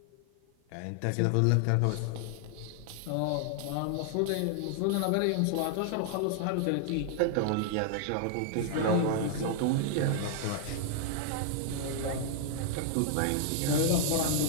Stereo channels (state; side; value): different; both; correlation 0.00